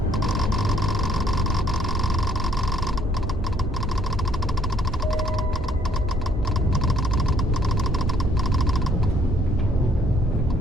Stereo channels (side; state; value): both; normal; correlation 0.63